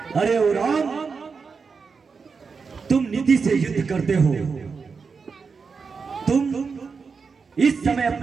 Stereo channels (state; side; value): quieter; left; 5.2 dB